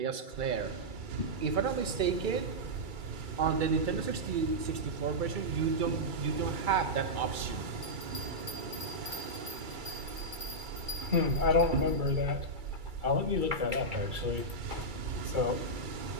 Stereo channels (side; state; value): left; late; 2.3 ms